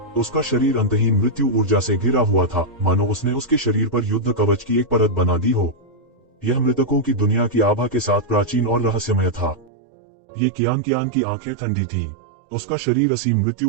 उसका शरीर अंतहीन मृत्यु ऊर्जा से घिरा हुआ था, मानो उसने उसके शरीर पर युद्ध कवच की एक परत बना दी हो। यह मृतकों की दुनिया की आभा के साथ प्राचीन और रहस्यमय था। ये कियान की आंखें ठंडी थीं। उसका शरीर असीम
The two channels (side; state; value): left; drops out; at 9.7 s